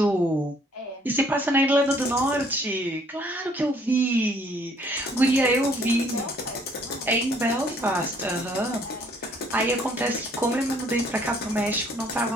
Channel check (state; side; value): normal; both; correlation 0.62